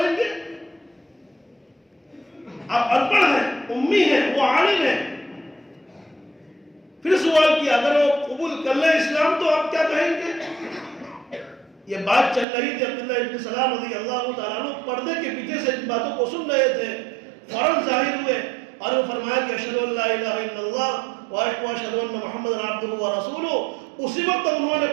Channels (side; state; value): left; drops out; at 12.5 s